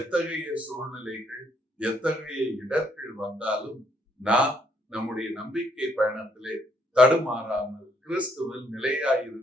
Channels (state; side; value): normal; both; correlation 0.70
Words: சூழ்நிலைகள், எத்தகைய இடர்கள் வந்தாலும் நாம் நம்முடைய நம்பிக்கை பயணத்திலே தடுமாறாமல் கிறிஸ்துவில்